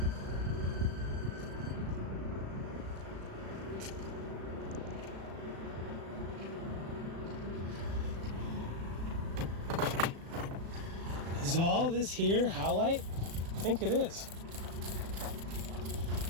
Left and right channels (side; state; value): left; late; 36 ms